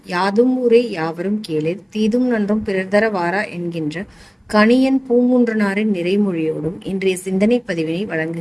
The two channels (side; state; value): both; identical; correlation 1.00